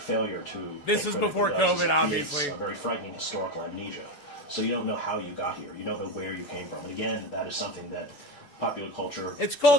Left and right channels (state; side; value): late; right; 6.9 ms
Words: to... This is before COVID, obviously. A very frightening historical amnesia. So you don't know how you got here. You don't know where you came from. And again, that is something that popular culture... It's